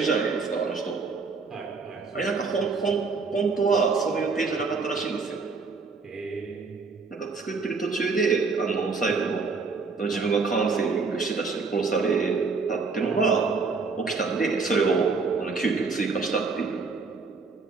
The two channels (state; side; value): quieter; left; 4.5 dB